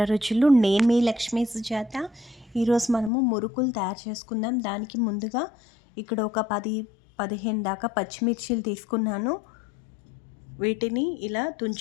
రుచులు. నేను మీ లక్ష్మీ సుజాత. ఈరోజు మనము మురుకులు తయారు చేసుకుందాం. దానికి ముందుగా ఇక్కడ ఒక 10-15 దాకా పచ్చిమిర్చీలు తీసుకున్నాను. వీటిని ఇలా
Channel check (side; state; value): right; drops out; at 3.1 s